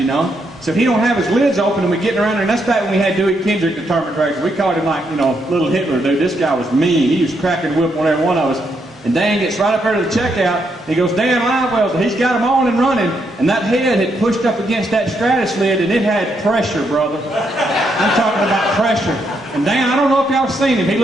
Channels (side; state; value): both; normal; correlation 0.78